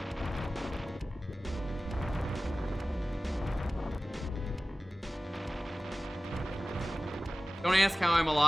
ask how I'm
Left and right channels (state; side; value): normal; both; correlation 0.97